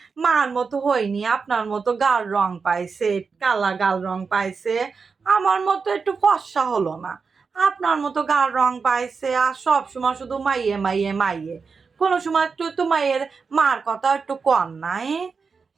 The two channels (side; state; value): left; quieter; 5.1 dB